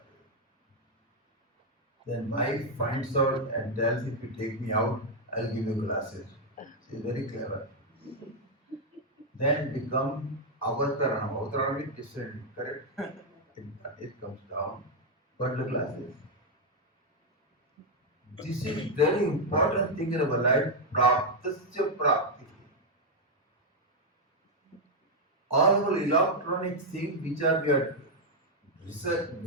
Then wife finds out and tells, if you take me out, I'll give you glasses. She's very clever. Then become avataranam. Avataranam is descending, correct? It comes down. But the glasses. This is very important thing in our life. Praptasya prapti. All our electronic things which are we are research,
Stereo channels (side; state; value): both; normal; correlation 0.00